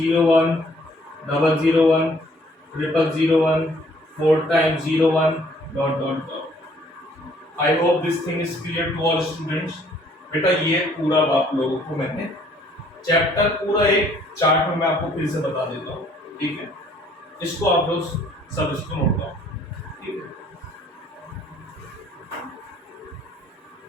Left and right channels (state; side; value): normal; both; correlation 0.61